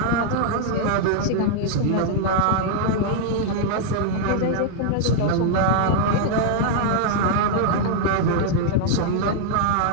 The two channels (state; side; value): different; both; correlation -0.01